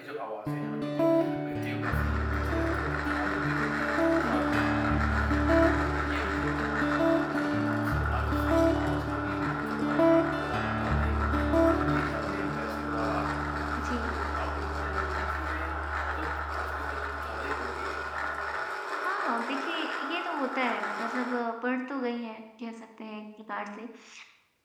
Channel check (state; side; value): identical; both; correlation 1.00